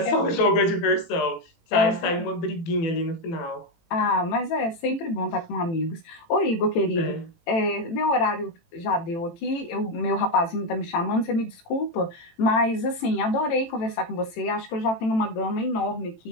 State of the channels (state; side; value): late; right; 18 ms